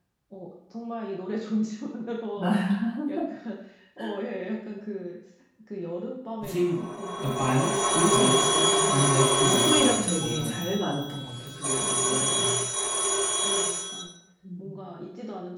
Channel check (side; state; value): both; identical; correlation 1.00